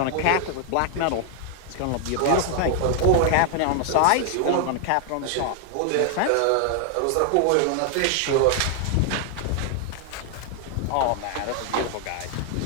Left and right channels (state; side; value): different; both; correlation 0.00